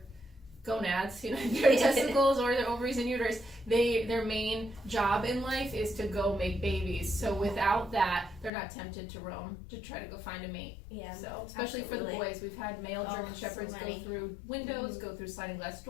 gonads, their testicles or their ovaries and uterus, their main job in life is to go make babies. So without that, they're not tempted to roam to try to go find a mate. Yeah, so especially for the boys, we've had male German Shepherds go through windows, go through sliding glass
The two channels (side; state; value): right; drops out; at 8.5 s